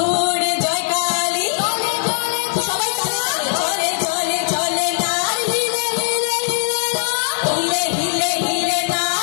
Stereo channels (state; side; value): silent; right; digital silence